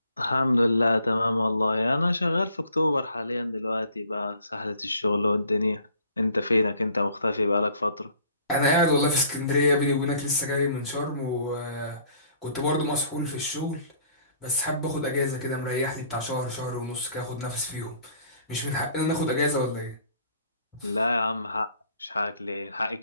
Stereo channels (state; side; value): inverted; both; correlation -0.57